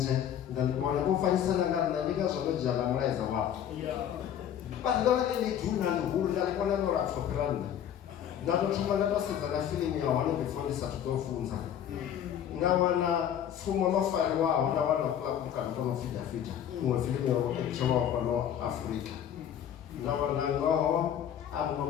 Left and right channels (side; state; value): right; quieter; 9.8 dB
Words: ndandibona vho fanyisana nga nṋe ndi ngazwo ndo dzhia na mulaedza wavho vhathu ndo vha ḽi duna ḽihulu nda ḽi kona no lapfho fhira nṋe nda to thoma nda to sedza na fiḽimu ya hone before ndi sathu ḓo funza nda wana pfumo ḽo fariwaho nda wana mukano to no pfi Davida iṅwe fiḽimu ya etshelwaho fhano Afrika nda wana ngoho a muṅwe